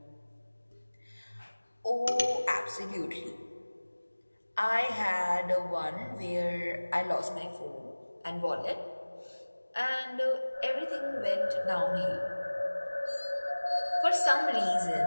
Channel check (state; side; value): inverted; both; correlation -1.00